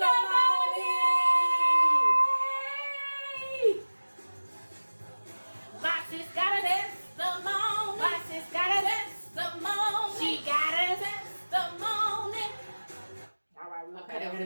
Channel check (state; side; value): inverted; both; correlation -1.00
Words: My sis got a testimony. My sis got a testimony. She got a testimony. All right, we'll cut